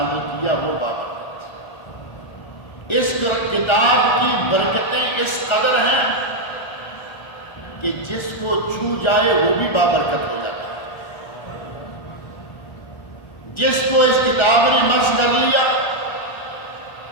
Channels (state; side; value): late; right; 1.4 ms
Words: کیا وہ بابرکت. اس کتاب کی برکتیں اس قدر ہیں کہ جس کو چھو جائے وہ بھی بابرکت ہو جاتا ہے. جس کو اس کتاب نے مس کر لیا